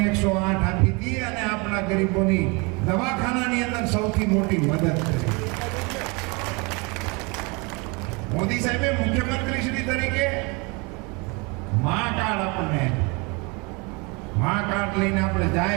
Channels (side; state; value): left; quieter; 29.0 dB